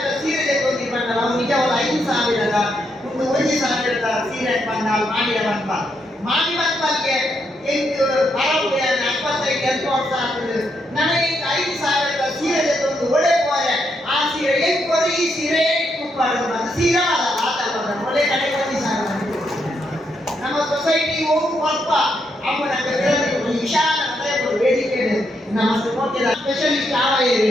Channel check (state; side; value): normal; both; correlation 0.79